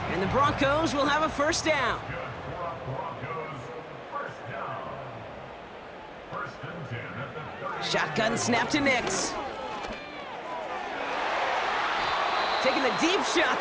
And the Broncos will have a first down. Shotgun snap to Nix. Taking the deep shot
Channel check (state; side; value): identical; both; correlation 1.00